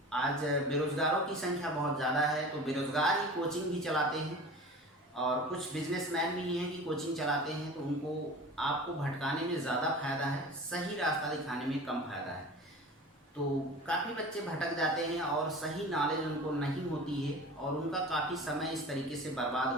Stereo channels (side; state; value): both; normal; correlation 0.38